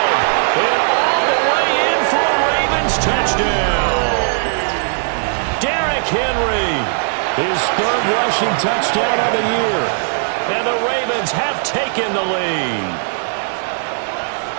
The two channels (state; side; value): silent; left; digital silence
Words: and all the way in for a Ravens touchdown. Derrick Henry, his 3rd rushing touchdown of the year. And the Ravens have taken the lead.